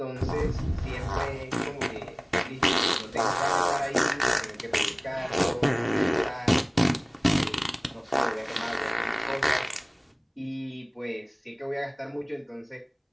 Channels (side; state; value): both; identical; correlation 1.00